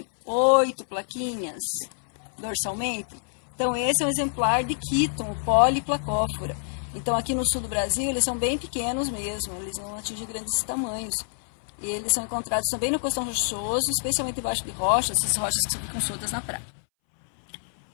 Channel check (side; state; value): right; silent; 61 dB below the other